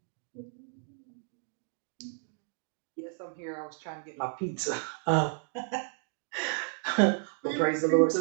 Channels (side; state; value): left; silent; 56 dB below the other